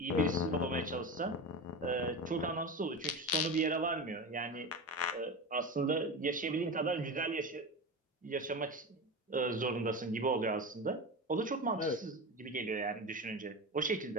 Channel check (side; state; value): both; normal; correlation 0.24